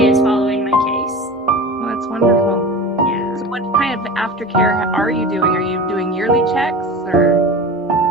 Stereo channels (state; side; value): normal; both; correlation 0.33